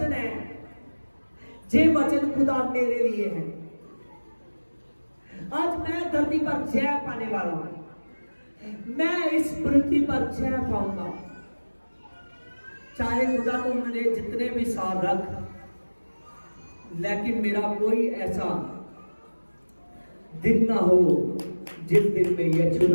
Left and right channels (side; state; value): both; inverted; correlation -1.00